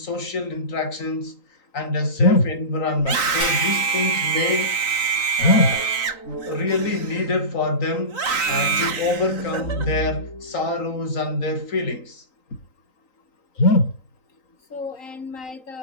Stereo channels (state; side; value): late; right; 3.9 ms